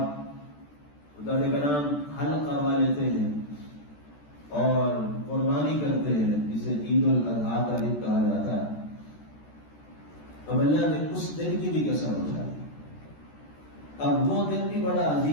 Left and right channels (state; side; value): late; right; 14 ms